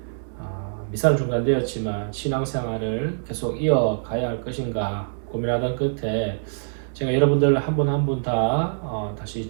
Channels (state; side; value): silent; left; digital silence